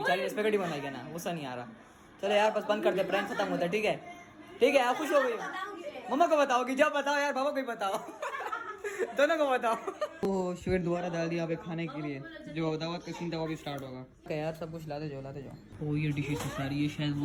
स्पेगेटी बनाएगी ना, गुस्सा नहीं आ रहा। चलो यार बस बंद कर दे, प्रैंक खत्म होता है, ठीक है? आप खुश हो गई? मम्मा को बताओगी? जब बताओ यार, पापा को भी बताओ। दोनों को बताओ। तो शुगर दोबारा डाल दिया पे खाने के लिए, जो दावत का सीन था वो भी स्टार्ट होगा। क्या यार सब कुछ लाते जाओ। ओ ये डिशेस सारी, ये शायद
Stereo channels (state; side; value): identical; both; correlation 1.00